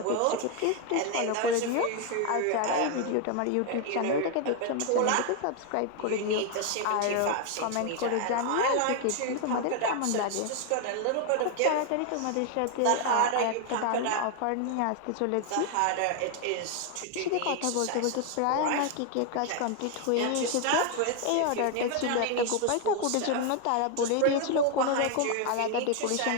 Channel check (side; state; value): both; different; correlation 0.01